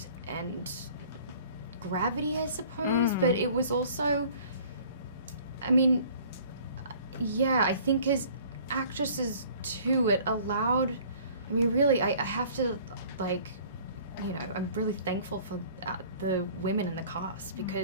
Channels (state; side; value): inverted; both; correlation -0.51